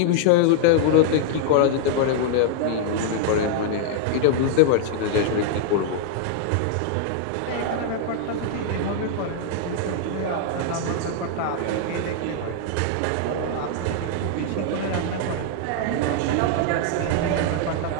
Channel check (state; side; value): different; both; correlation -0.01